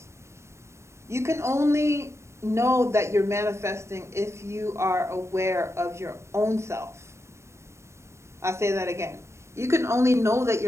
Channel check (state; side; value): late; left; 0.13 ms